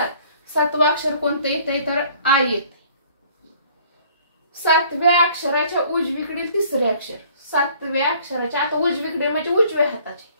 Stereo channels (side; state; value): both; inverted; correlation -0.56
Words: 7वं अक्षर कोणतं येते, तर आय येते. 7व्या अक्षराच्या उजवीकडील तिसरे अक्षर, 7व्या अक्षराच्या आता उजवीकडे म्हणजे उजव्या हाताचे